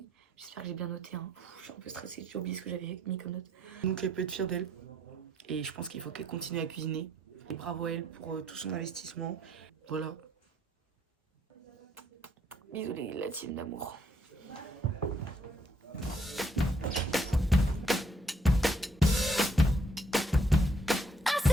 j'espère que j'ai bien noté. Hein. Je suis un peu stressée, j'ai oublié ce que j'avais mis comme note. Donc elle peut être fière d'elle. Et je pense qu'il faut qu'elle continue à cuisiner. Et bravo à elle pour tout son investissement. Voilà. Bisous la team d'amour.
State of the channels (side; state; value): both; normal; correlation 0.69